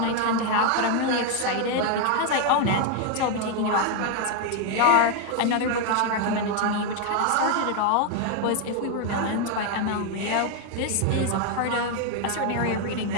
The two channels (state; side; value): different; both; correlation 0.01